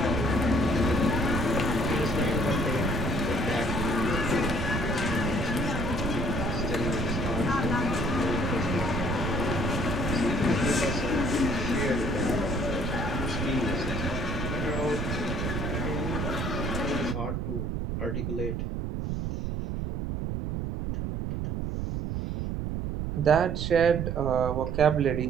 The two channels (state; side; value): noise; right; rumble, 2 dB below the sound